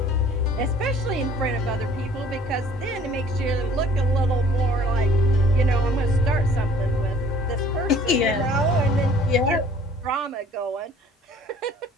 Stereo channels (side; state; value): both; normal; correlation 0.53